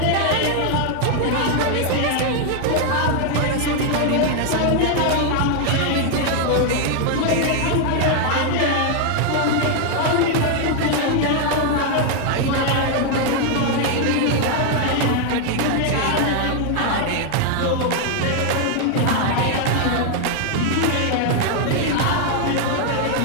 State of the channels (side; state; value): both; different; correlation 0.00